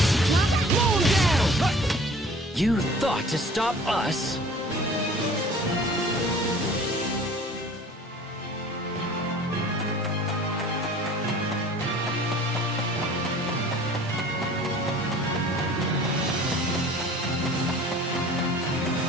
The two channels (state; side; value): normal; both; correlation 0.47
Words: Blow him down! You thought to stop us?